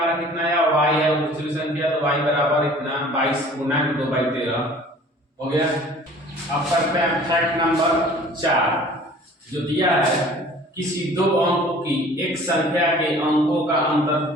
कितना है y है, और दूसरी संख्या तो y बराबर इतना 22 गुना 2/13 हो गया। अब करते हैं फैक्ट नंबर 4 जो दिया है, किसी दो अंकों की एक संख्या के अंकों का अंतर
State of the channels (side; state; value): both; normal; correlation 0.48